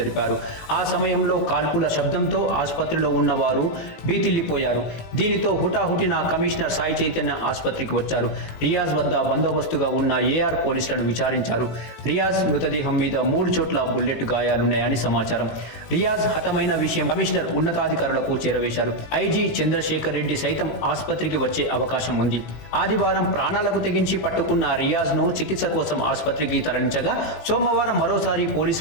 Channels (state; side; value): late; right; 18 ms